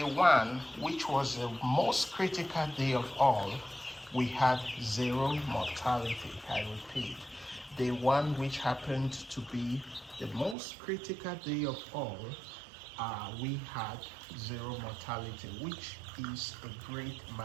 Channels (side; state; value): left; drops out; at 10.6 s